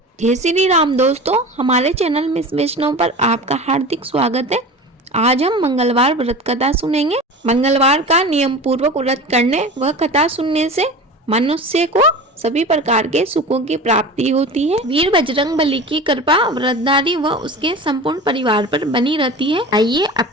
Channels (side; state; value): both; normal; correlation 0.33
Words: जय श्री राम दोस्तों, हमारे चैनल मिस वैष्णव पर आपका हार्दिक स्वागत है। आज हम मंगलवार व्रत कथा सुनेंगे। मंगलवार का नियम पूर्वक व्रत करने व कथा सुनने से मनुष्य को सभी प्रकार के सुखों की प्राप्ति होती है। वीर बजरंगबली की कृपा व्रतधारी व उसके संपूर्ण परिवार पर बनी रहती है। आइए अब